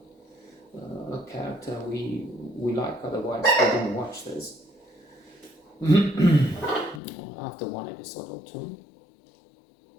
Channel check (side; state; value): right; drops out; at 7.0 s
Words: a character we like, otherwise we don't watch this. After 1 episode or 2.